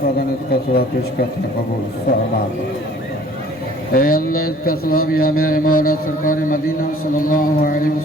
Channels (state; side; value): normal; both; correlation 0.53